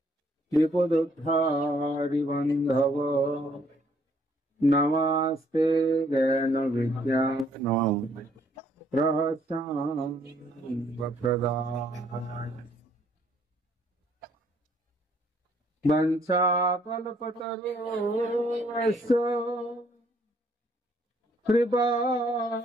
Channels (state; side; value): normal; both; correlation 0.66